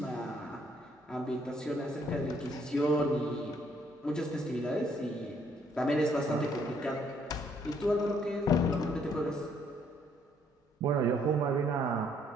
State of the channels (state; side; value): normal; both; correlation 0.67